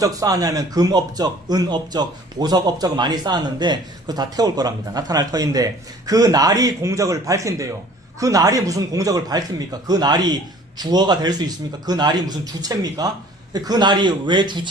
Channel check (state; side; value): normal; both; correlation 0.51